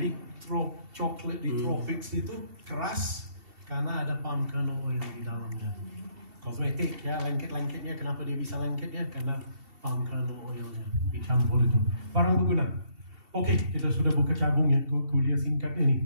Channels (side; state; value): left; late; 2.7 ms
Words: coklat di tropics itu keras karena ada palm kernel oil di dalamnya. Kosmetik ya, lengket-lengketnya kenapa dia bisa lengket ya? Karena palm kernel oilnya dicampur itu. Barang berguna. Oke, kita sudah buka cabung ya kuliah singkat